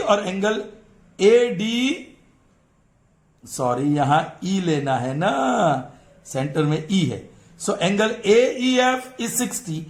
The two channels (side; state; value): both; identical; correlation 1.00